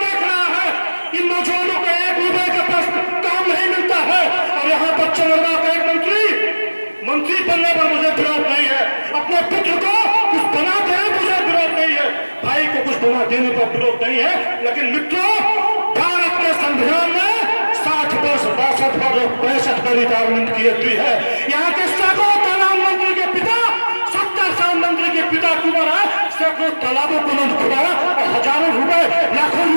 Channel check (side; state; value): both; inverted; correlation -1.00